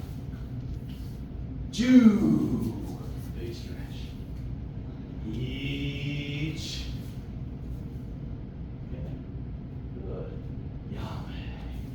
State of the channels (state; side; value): identical; both; correlation 1.00